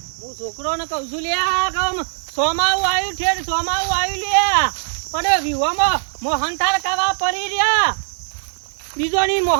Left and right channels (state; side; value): silent; left; 65 dB below the other